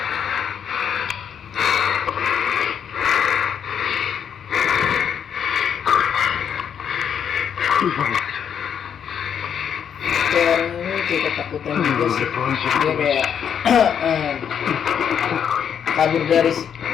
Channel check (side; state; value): right; quieter; 8.1 dB